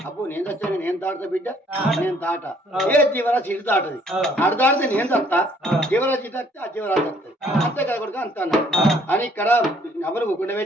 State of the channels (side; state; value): both; normal; correlation 0.62